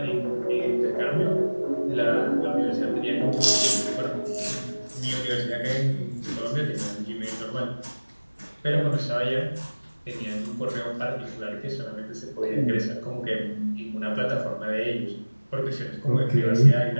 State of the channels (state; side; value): inverted; both; correlation -1.00